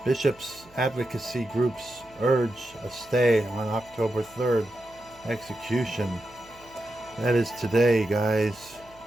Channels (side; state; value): right; noise; hum, 27 dB below the sound